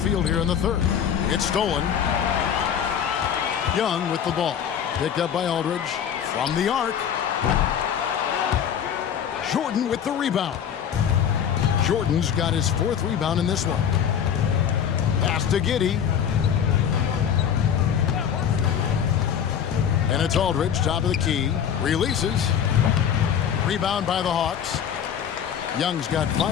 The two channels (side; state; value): right; quieter; 8.5 dB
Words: here in the third. It's stolen. Young with the ball. Picked up by Aldridge. From the arc. Jordan with the rebound. Jordan's got his 4th rebound in this one. Pass to Giddey. And it's Aldridge, top of the key. Releases. Rebound by the Hawks. Young's got